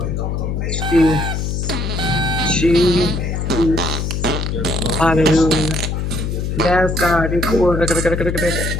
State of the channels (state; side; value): noise; left; hum, 2 dB below the sound